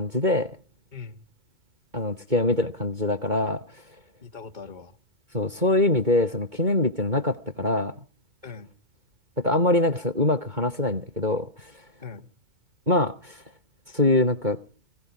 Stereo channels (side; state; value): left; late; 2.2 ms